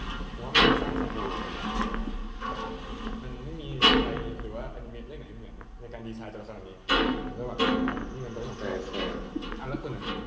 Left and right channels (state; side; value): identical; both; correlation 1.00